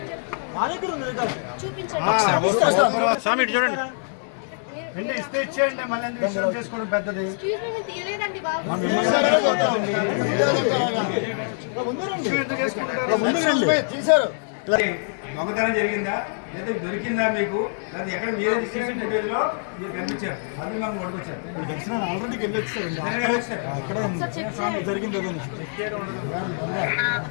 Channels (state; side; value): silent; right; 62 dB below the other